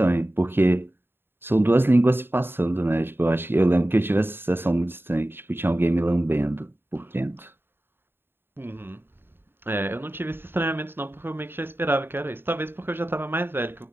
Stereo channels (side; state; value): left; late; 0.10 ms